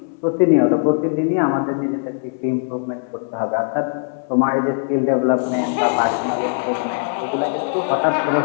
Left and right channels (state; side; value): silent; right; digital silence